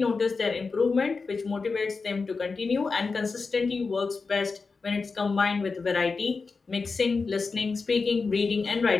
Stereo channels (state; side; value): quieter; right; 4.5 dB